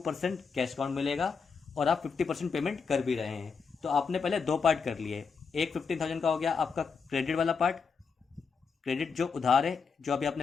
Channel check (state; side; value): quieter; right; 5.5 dB